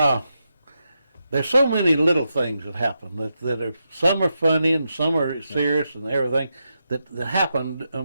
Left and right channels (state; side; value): inverted; both; correlation -0.86